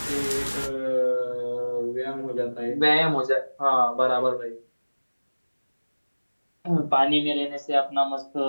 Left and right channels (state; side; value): inverted; both; correlation -1.00